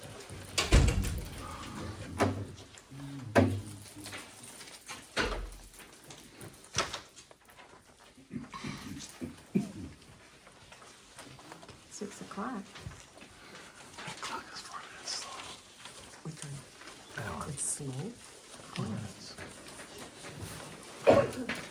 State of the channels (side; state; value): both; identical; correlation 1.00